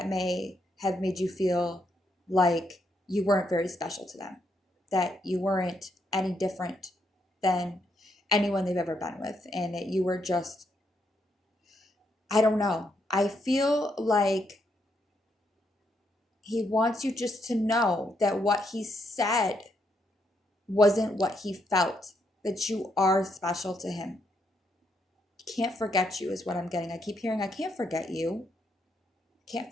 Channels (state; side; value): normal; both; correlation 0.77